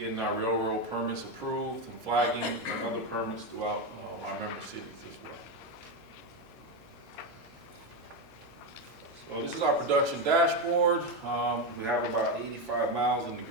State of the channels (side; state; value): both; normal; correlation 0.11